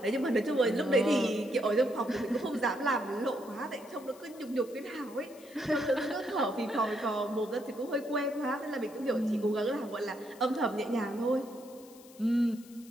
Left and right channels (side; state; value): left; noise; hiss, 23 dB below the sound